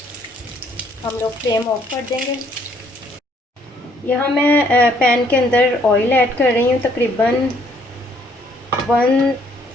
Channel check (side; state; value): both; normal; correlation 0.65